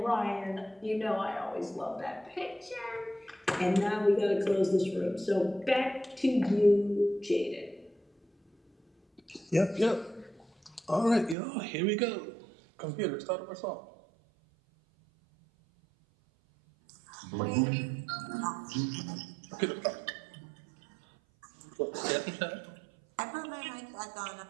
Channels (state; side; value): drops out; left; at 11.4 s